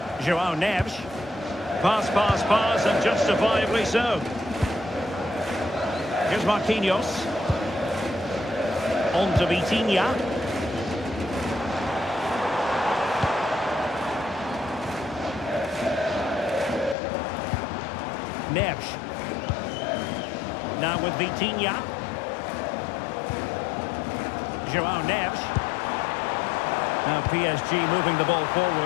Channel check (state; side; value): drops out; right; at 16.9 s